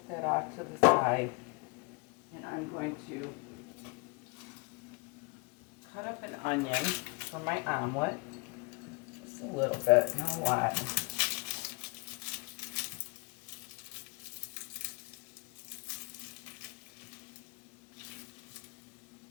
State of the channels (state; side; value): quieter; right; 31.0 dB